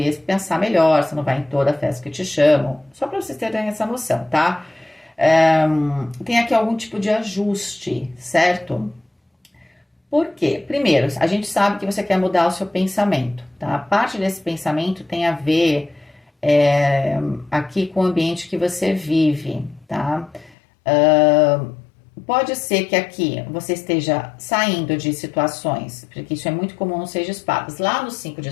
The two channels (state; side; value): drops out; right; at 20.6 s